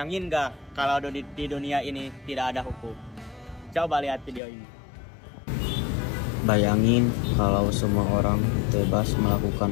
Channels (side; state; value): right; drops out; at 4.4 s